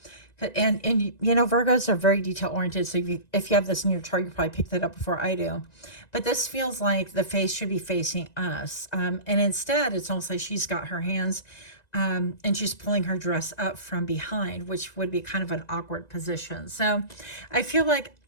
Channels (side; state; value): right; late; 1.9 ms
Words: And you know, Virgos are very detail oriented. So if you have this in your chart, you probably picked that up before I do. But this feels like the face should be facing us. And instead, it's almost like she's got her hands and she's pulling her dress up from behind, which would be kind of an awkward position. So I feel like